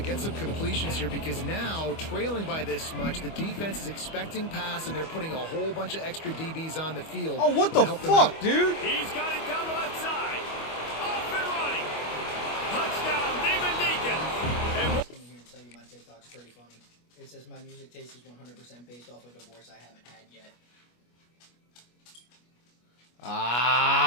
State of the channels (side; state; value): right; late; 25 ms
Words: get some completions here because now, trailing by this much, the defense is expecting pass, and they're putting a whole bunch of extra DBs on the field. Oh, what the fuck, dude? He's got it down the left side. Off and running. Touchdown, Demon Deacons. And I came in here and tell you my TikTok's pretty funny. It says my music taste is 100% based off a divorce I haven't had yet.